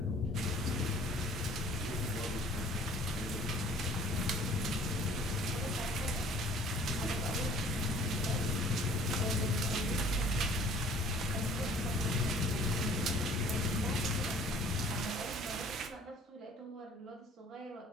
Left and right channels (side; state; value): both; normal; correlation 0.53